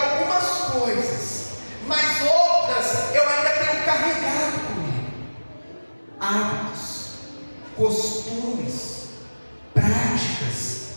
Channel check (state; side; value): inverted; both; correlation -1.00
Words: algumas coisas, mas outras eu ainda tenho carregado comigo? Hábitos, costumes, práticas